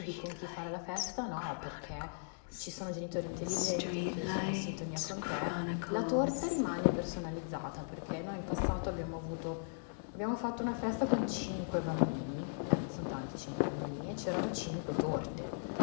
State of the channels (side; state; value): right; silent; digital silence